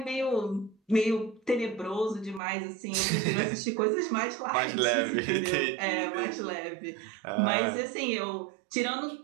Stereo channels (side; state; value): left; drops out; at 2.4 s